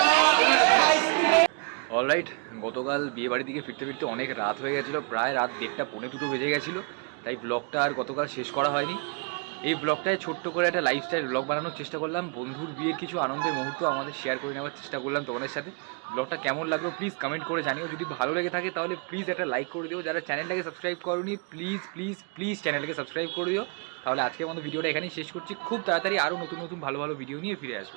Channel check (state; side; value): quieter; left; 36.7 dB